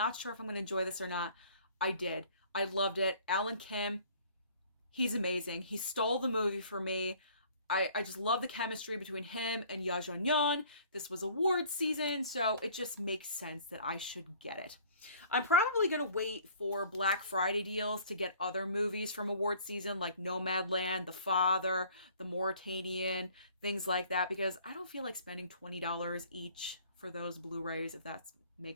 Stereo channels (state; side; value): inverted; both; correlation -0.53